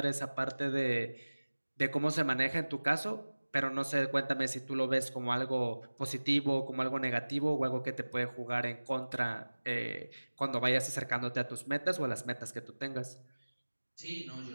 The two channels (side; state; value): both; inverted; correlation -1.00